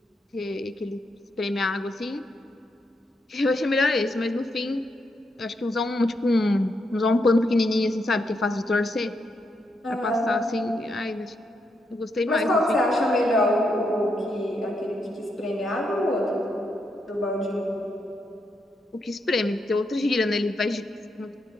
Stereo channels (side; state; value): both; normal; correlation 0.81